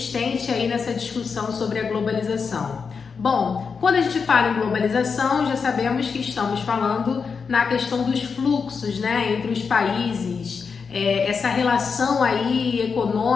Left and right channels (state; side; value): quieter; right; 5.6 dB